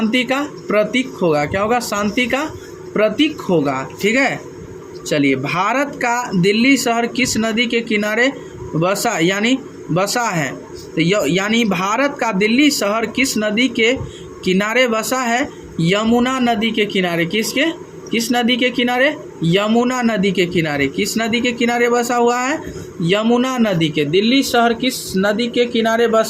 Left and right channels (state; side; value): identical; both; correlation 1.00